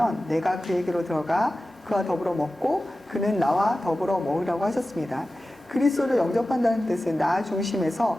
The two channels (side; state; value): both; normal; correlation 0.95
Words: 내가 그에게로 들어가 그와 더불어 먹고 그는 나와 더불어 먹으라고 하셨습니다. 그리스도를 영접한다는 뜻은 나